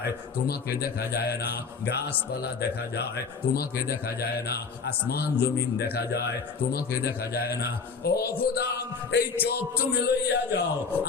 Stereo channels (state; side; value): quieter; right; 5.2 dB